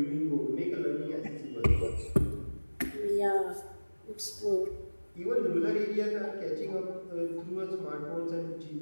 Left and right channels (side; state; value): both; inverted; correlation -1.00